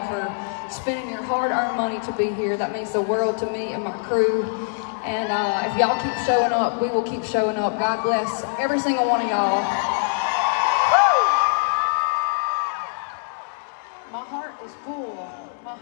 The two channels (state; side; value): silent; right; digital silence